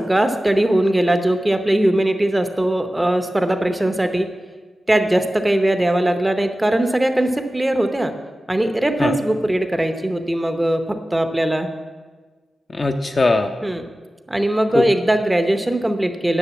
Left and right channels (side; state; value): both; normal; correlation 0.95